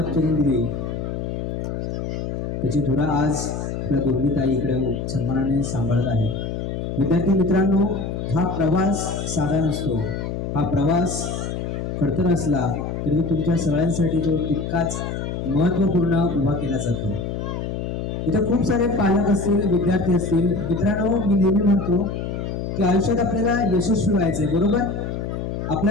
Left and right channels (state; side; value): noise; left; hum, 4 dB below the sound